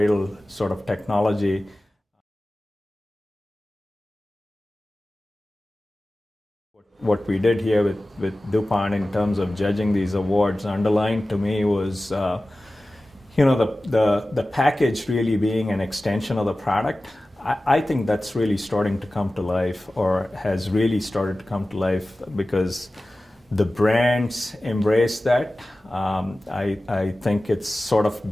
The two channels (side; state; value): both; normal; correlation 0.96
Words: sort of technology. What we did here with DuPont in terms of judging these awards underlined to me was, the package really being an extension of the product. I think that's really starting to come to life, or has really started to come to life, because The brands embrace that. I think it's sort of